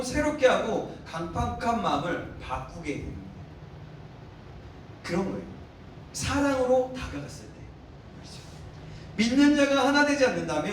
새롭게 하고 강팍한 마음을 바꾸게 됩니다. 그런 거예요. 사랑으로 다가갔을 때. 그렇죠. 믿는 자가 하나 되지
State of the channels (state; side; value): identical; both; correlation 1.00